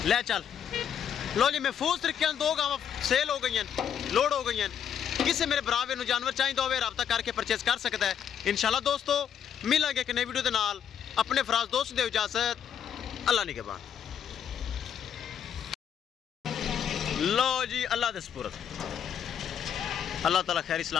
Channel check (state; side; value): quieter; right; 8.7 dB